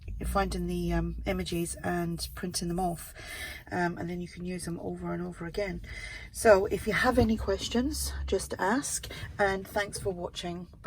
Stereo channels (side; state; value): both; identical; correlation 1.00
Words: the images and printing them off, and then you can use them over and over again. So if you have any questions, just ask, and thanks for watching.